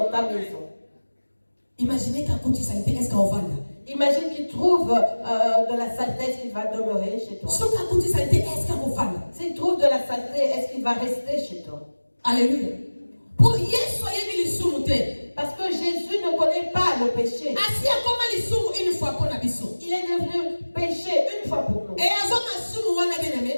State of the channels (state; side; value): inverted; both; correlation -1.00